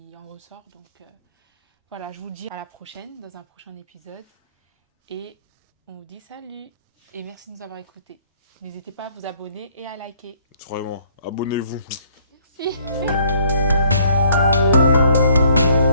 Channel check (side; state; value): both; inverted; correlation -0.62